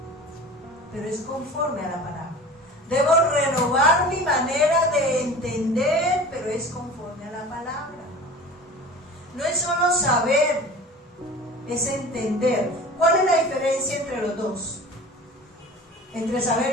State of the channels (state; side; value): normal; both; correlation 0.38